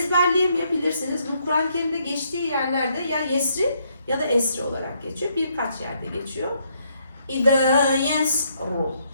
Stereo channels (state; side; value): inverted; both; correlation -0.72